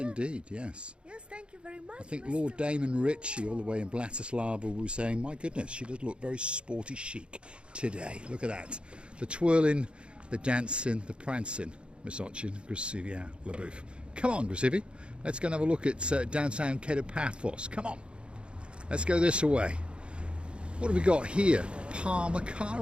yes. Yes, thank you very much. I think Mr. Lord Damon Ritchie, all the way in Bratislava, was saying, my goodness, she does look very sporty chic today. Look at that. The twirling, the dancing, the prancing. Miss Ochin, Grazie via la bouffe. Come on, Grazie. Let's go and have a look at downtown Kato Paphos. Come on. Let's go this way. What have we got here? Palmer car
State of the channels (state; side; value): late; left; 0.056 ms